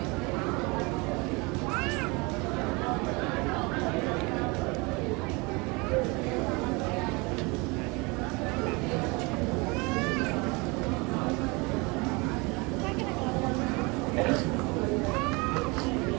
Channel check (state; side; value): quieter; left; 27.2 dB